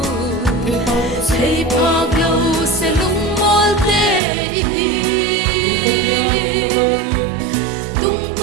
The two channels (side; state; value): left; drops out; at 4.2 s